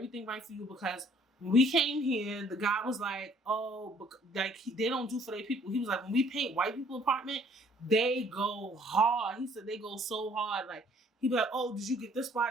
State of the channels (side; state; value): both; normal; correlation 0.60